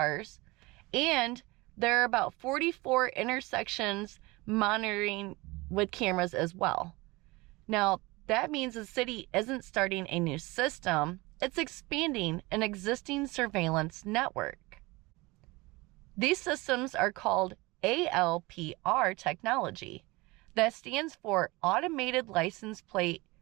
and there are about 44 intersections monitoring with cameras as well. Now, that means the city isn't starting a new system, it's expanding an existing surveillance network. These systems are called ALPR technology. That stands for Automated License Plate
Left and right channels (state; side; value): quieter; left; 23.0 dB